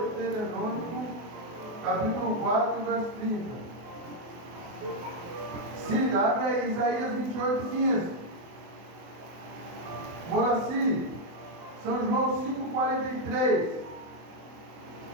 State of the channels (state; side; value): late; left; 24 ms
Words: capítulo 4, verso 30. Siga, abre aí, Isaías 28, 15. Moraci, São João 5,43.